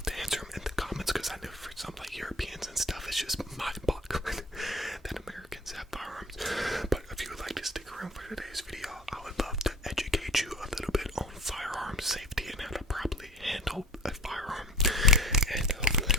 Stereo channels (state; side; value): normal; both; correlation 0.45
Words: to answer them in the comments, because I know for some like Europeans and stuff, it's just mind-boggling that Americans have firearms. But if you would like to stick around for today's video, I would love to educate you a little bit on firearm safety and how to properly handle a firearm. And hopefully